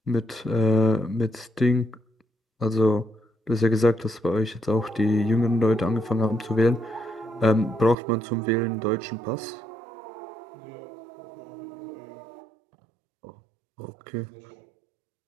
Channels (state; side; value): drops out; left; at 8.0 s